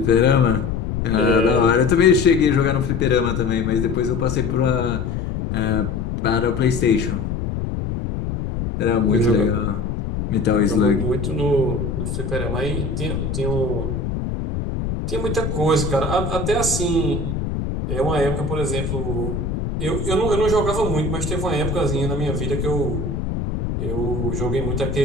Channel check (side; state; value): left; noise; rumble, 3 dB below the sound